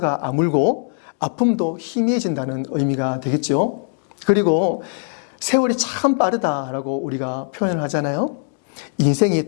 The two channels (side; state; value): right; silent; digital silence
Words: 아물고 아픔도 희미해진다는 의미가 되겠죠. 그리고 세월이 참 빠르다라고 우리가 표현을 하잖아요. 인생이